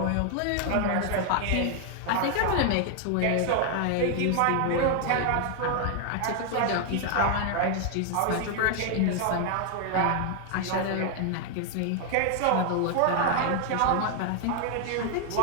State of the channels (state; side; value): different; both; correlation 0.00